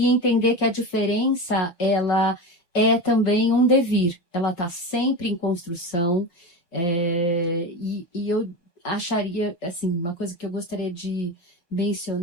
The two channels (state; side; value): late; right; 5.6 ms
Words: entender que a diferença, ela é também um devir, ela está sempre em construção, e eu acharia, assim, uma coisa que eu gostaria de